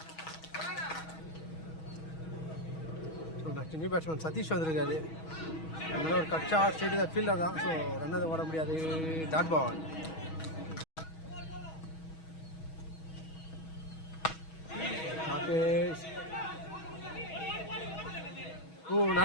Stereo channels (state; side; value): late; right; 6.2 ms